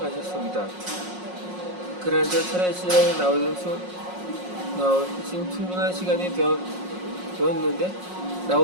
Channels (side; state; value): left; late; 5.5 ms